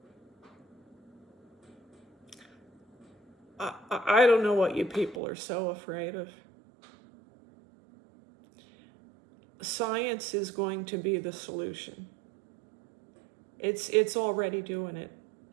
I don't know what you people are so afraid of. Science is going to be the solution. It's already doing it.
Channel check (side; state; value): left; drops out; at 5.2 s